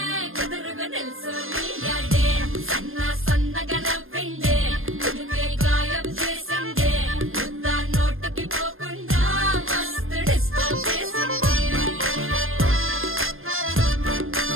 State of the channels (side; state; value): left; late; 0.60 ms